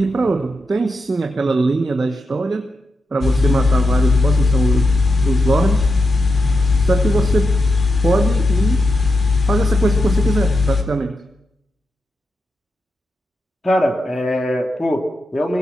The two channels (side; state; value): both; normal; correlation 0.87